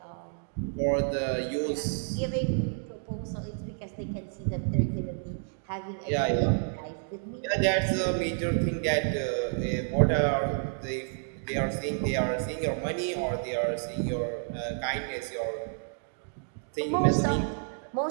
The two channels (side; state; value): left; silent; 58 dB below the other